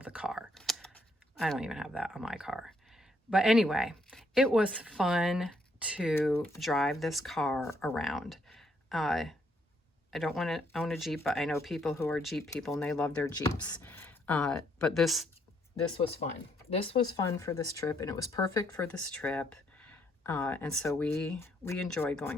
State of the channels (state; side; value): normal; both; correlation 0.72